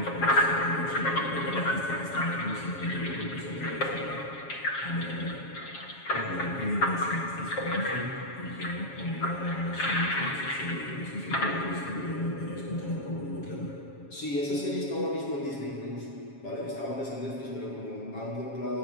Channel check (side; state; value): right; late; 7.3 ms